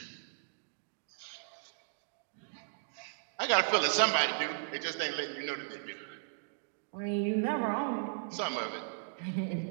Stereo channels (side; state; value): left; silent; digital silence